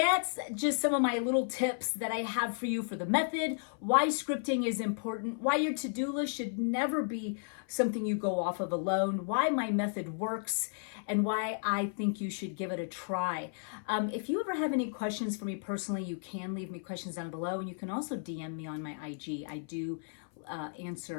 just some of my little tips that I have for you for the method, why scripting is important, why your to-do list should never be something you go off of alone, why my method works, and why I think you should give it a try. If you ever have any questions for me personally, you can leave me questions down below, and you can also DM me on my IG. I do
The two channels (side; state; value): right; silent; 55 dB below the other